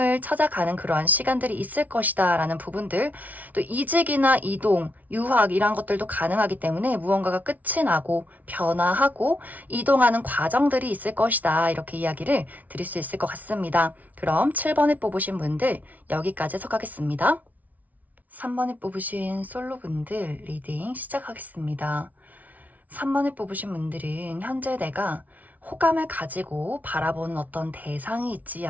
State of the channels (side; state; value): left; late; 0.075 ms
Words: 찾아가는 그러한 시간들이 있을 것이다 라는 부분들, 또 이직이나 이동, 유학 이런 것들도 가능하기 때문에 무언가가 끝이 나고 변화하고 이동하는 과정들이 있을 것이다. 이렇게 이야기를 드릴 수 있을 것 같습니다. 그럼 7번에 뽑으신 분들 여기까지 해석하겠습니다. 3번에 뽑으신 솔로분들 리딩 시작하겠습니다. 3번에 뽑으신 분들은 현재 내가 호감을 가지고 바라보는 어떤 대상이 있지